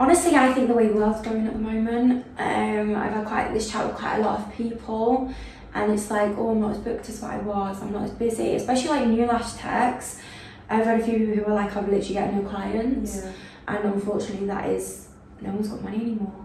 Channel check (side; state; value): both; identical; correlation 1.00